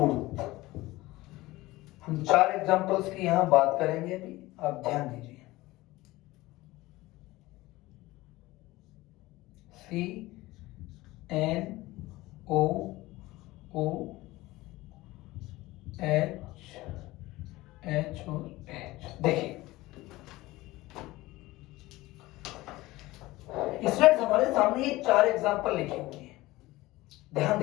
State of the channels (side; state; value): right; quieter; 19.0 dB